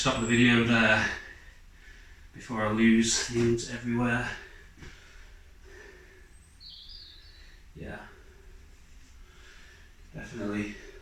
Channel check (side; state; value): both; identical; correlation 1.00